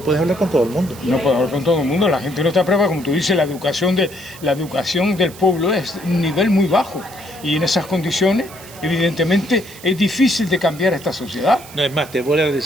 puedes hablar con todo el mundo. No puedes hablar con todo el mundo, la gente no está preparada, como tú dices, la educación del pueblo es un nivel muy bajo. Y en esas condiciones, evidentemente, es difícil de cambiar esta sociedad. No, es más, te voy a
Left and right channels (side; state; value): right; noise; hiss, 18 dB below the sound